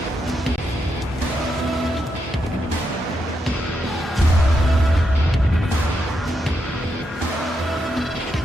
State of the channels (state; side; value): normal; both; correlation 0.82